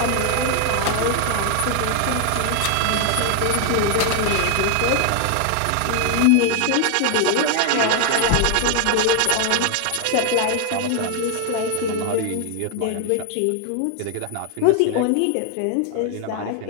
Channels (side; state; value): both; different; correlation 0.00